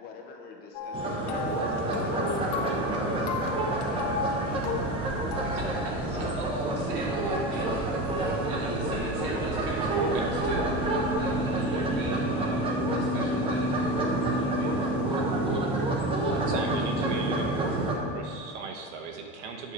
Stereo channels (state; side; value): normal; both; correlation 0.24